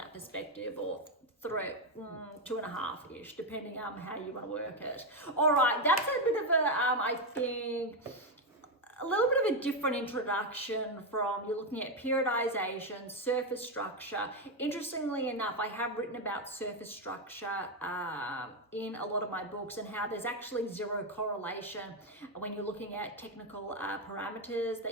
perspective, or 2.5-ish, depending on how you want to work it. All right, that's a bit of a, I think, a little bit of a different introduction from, you're looking at periodization, surface structure. Interestingly enough, I have written about surface structure in a lot of my books, and how there's actually zero correlation when you're looking at technical parameters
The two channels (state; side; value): normal; both; correlation 0.07